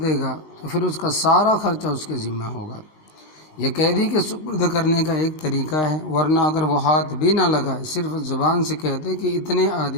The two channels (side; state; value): right; late; 19 ms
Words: گا تو پھر اس کا سارا خرچہ اس کے ذمہ ہوگا۔ یہ قیدی کے سپرد کرنے کا ایک طریقہ ہے، ورنہ اگر وہ ہاتھ بھی نہ لگائے، صرف زبان سے کہتے کہ اتنے